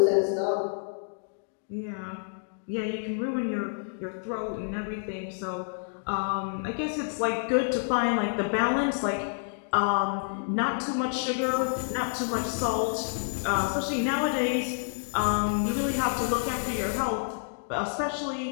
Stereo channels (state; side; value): silent; right; digital silence